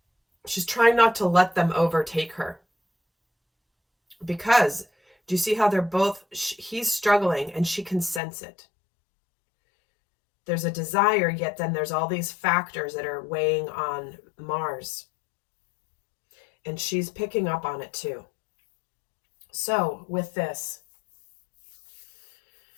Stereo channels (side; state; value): right; drops out; at 8.2 s